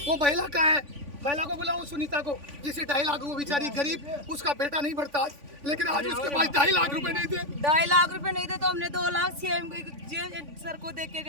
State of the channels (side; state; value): left; late; 3.5 ms